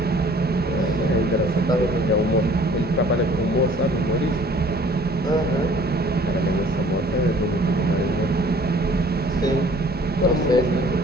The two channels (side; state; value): both; normal; correlation 0.53